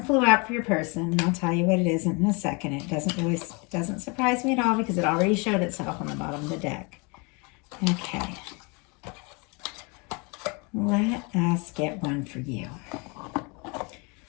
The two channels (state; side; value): quieter; right; 30.5 dB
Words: out for your person, and I'll tell you what it is in a second. It doesn't surprise me at all because it already showed itself on the bottom of the deck. Okay. Let us get one for you.